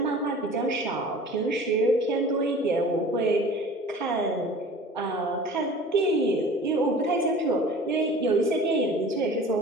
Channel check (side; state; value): both; normal; correlation 0.43